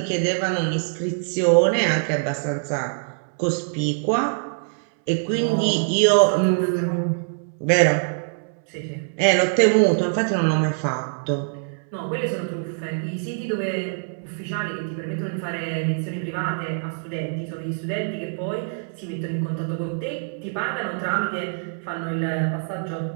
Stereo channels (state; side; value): silent; left; 63 dB below the other